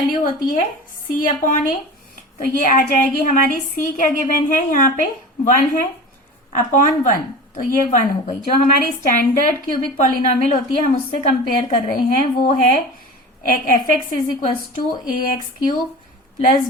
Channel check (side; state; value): both; normal; correlation 0.34